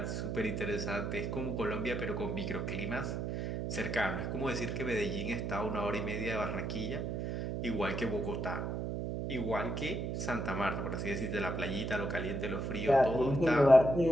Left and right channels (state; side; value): noise; right; hum, 2 dB below the sound